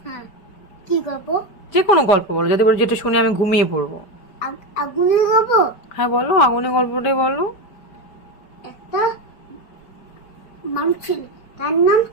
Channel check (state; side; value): late; right; 4.9 ms